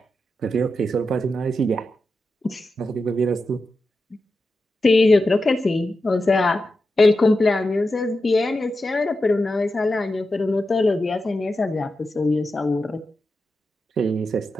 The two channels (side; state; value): both; normal; correlation 0.90